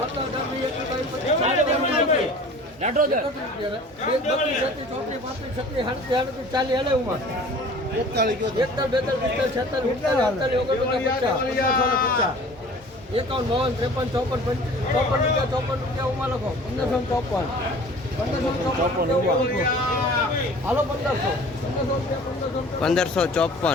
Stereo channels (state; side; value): normal; both; correlation 0.45